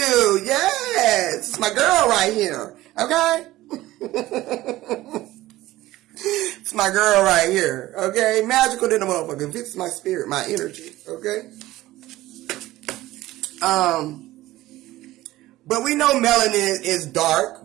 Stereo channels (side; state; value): left; quieter; 16.6 dB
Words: Yes. It's my girl right here, okay? It's my girl right here, okay? Magical than a motherfucker. Fits my spirit, my energy, okay? But we know melanin is dark.